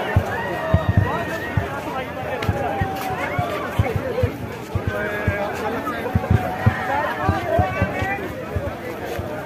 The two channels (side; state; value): both; identical; correlation 1.00